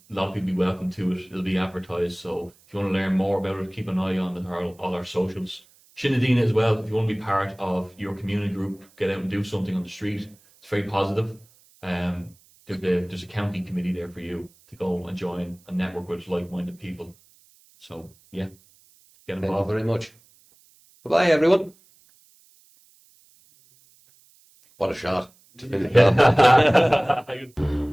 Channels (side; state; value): right; noise; hiss, 30 dB below the sound